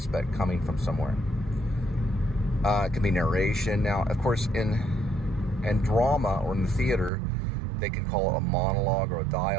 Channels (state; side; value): drops out; left; at 7.1 s